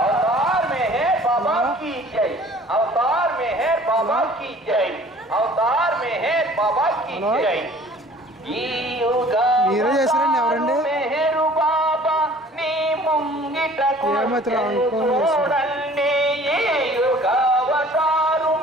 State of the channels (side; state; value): both; normal; correlation 0.50